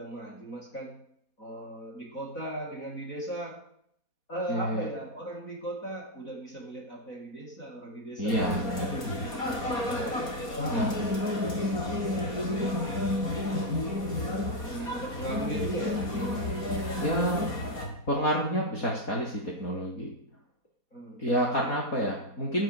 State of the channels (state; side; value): late; right; 4.3 ms